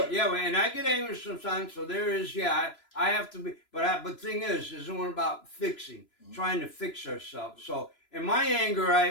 Yeah, and I get angry sometimes. So there is, I have to be. But the thing is one about fixing, trying to fix ourselves. So in my anger,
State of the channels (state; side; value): late; right; 2.9 ms